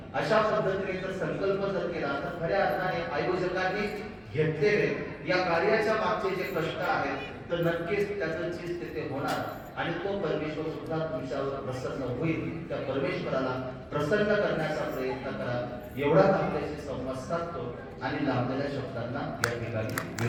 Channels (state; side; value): identical; both; correlation 1.00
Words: अशा पद्धतीने जर संकल्प जर केला तर खऱ्या अर्थाने आयोजकांनी घेतलेले या कार्याच्या मागचे जे कष्ट आहेत तर नक्कीच त्याचं चीज तिथे होणार आणि तो परमेश्वर सुद्धा तुमच्यावर प्रसन्न होईल. त्या परमेश्वराला प्रसन्न करण्याचा प्रयत्न करा. एवढाच आपल्याशी संवाद साधतो आणि लाभलेल्या शब्दांना या ठिकाणी